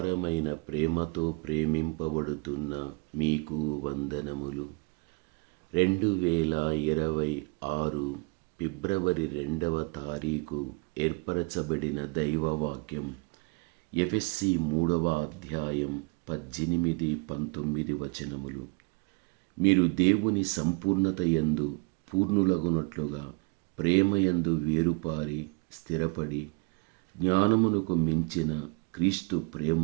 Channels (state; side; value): quieter; left; 30.1 dB